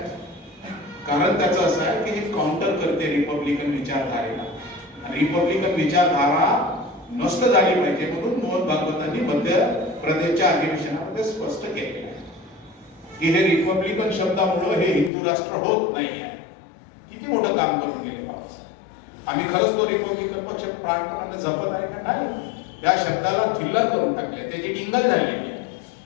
कारण त्याचं असं आहे की हे काउंटर करते रिपब्लिकन विचारधारेला. रिपब्लिकन विचारधारा नष्ट झाली पाहिजे म्हणून मोहन भागवतांनी मध्य प्रदेशच्या अधिवेशनामध्ये स्पष्ट केले की हे रिपब्लिकन शब्दामुळे हे हिंदू राष्ट्र होत नाही आहे. किती मोठं काम करून गेले बाबासाहेब. आम्ही खरंच तो रिपब्लिकन पक्ष प्राणपणाने जपत आहे का नाही? त्या शब्दाला थिल्लर करून टाकले, त्याची टिंगल झालेली आहे.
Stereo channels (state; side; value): drops out; right; at 15.1 s